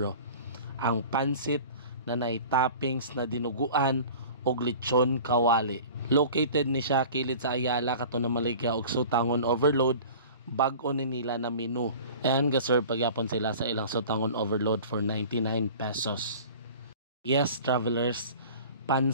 Ang pansit na nay toppings na dinuguan og lechon kawali. Located ni siya kilid sa Ayala kato na Maligya og Sutangon Overload, bag-o ni nila na menu. And gaserve pagyapon sila sa ilang Sutangon Overload for 99 pesos. Yes, travelers,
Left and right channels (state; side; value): inverted; both; correlation -0.41